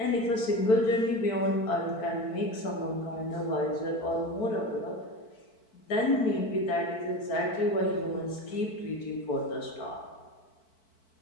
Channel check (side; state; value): right; late; 4.5 ms